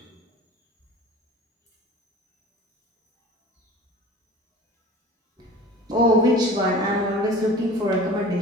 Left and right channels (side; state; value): both; normal; correlation 0.41